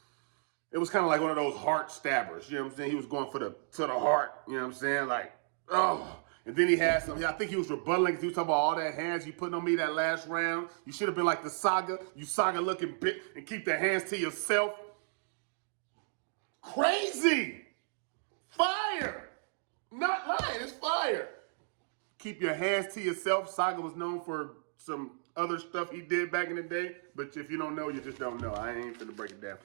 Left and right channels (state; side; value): silent; left; digital silence